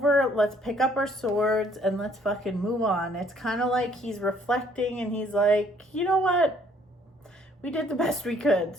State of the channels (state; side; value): normal; both; correlation 0.63